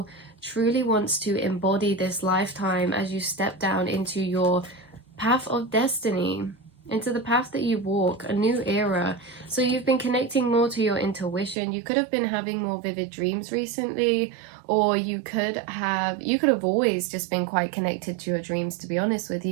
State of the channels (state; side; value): drops out; left; at 11.6 s